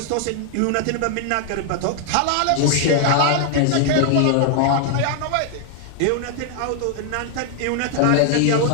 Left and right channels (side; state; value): both; different; correlation 0.00